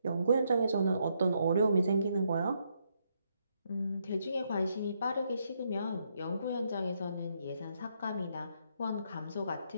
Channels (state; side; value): inverted; both; correlation -0.76